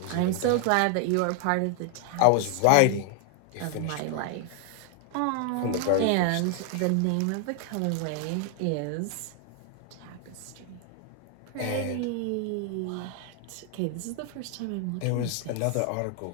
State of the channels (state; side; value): different; both; correlation 0.00